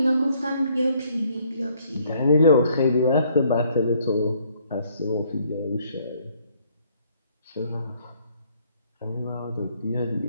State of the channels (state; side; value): inverted; both; correlation -0.65